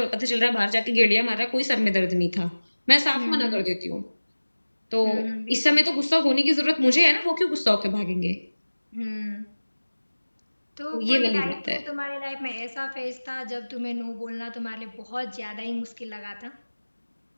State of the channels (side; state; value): both; inverted; correlation -1.00